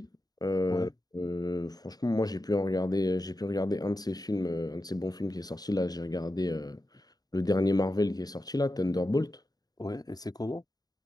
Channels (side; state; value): right; late; 0.19 ms